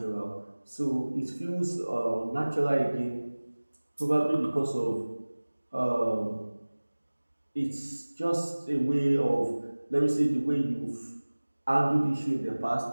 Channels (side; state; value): both; inverted; correlation -1.00